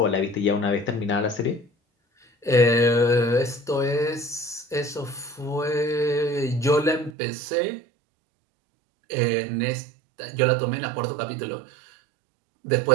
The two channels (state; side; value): drops out; left; at 7.1 s